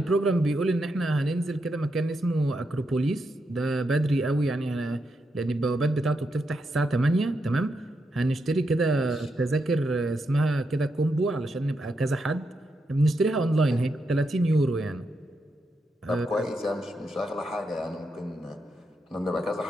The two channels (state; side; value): normal; both; correlation 0.83